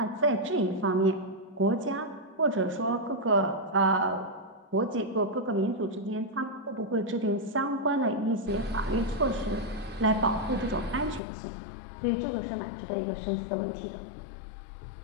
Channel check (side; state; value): right; drops out; at 11.2 s